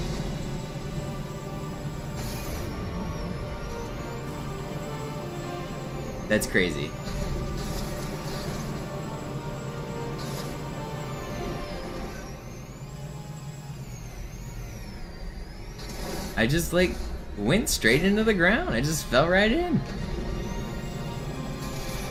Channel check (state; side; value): identical; both; correlation 1.00